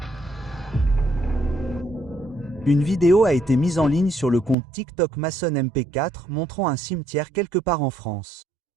Une vidéo a été mise en ligne sur le compte TikTok Mason MP4 montrant un cimetière quelque part en France.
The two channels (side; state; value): left; drops out; at 4.5 s